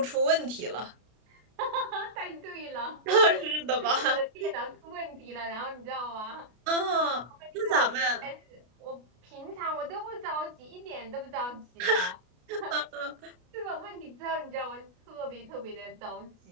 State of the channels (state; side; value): late; left; 33 ms